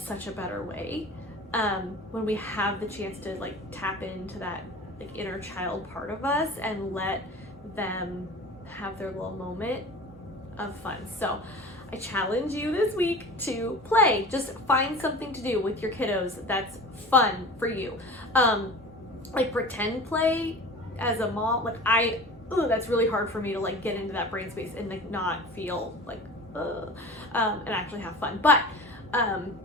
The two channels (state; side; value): normal; both; correlation 0.37